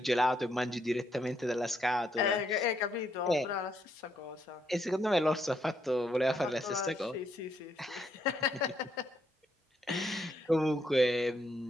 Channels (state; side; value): normal; both; correlation 0.75